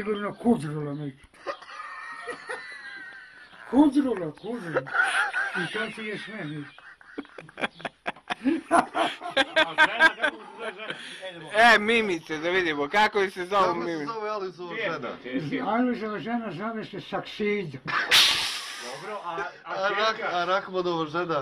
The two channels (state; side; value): identical; both; correlation 1.00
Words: Kudrula neki. Kudrula. I to ti je sve neki. Mimice, da vidimo, kako se zove Mimice? Kako se zove Alojzova žena? Alojzova žena zove se Saksida. Dobro, a Rahmanova